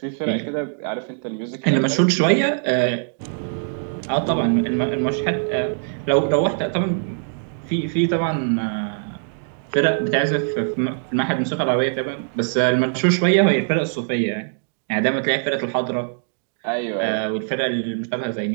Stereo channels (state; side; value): silent; left; digital silence